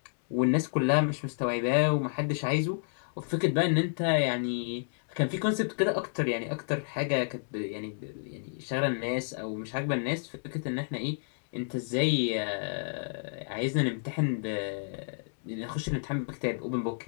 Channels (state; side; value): silent; right; digital silence